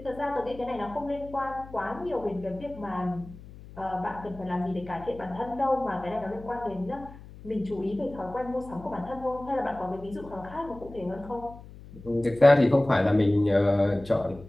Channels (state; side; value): noise; left; hum, 17 dB below the sound